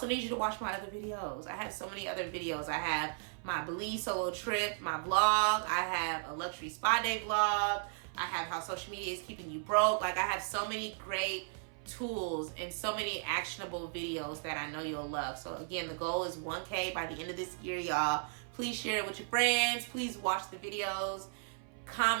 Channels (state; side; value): silent; left; 54 dB below the other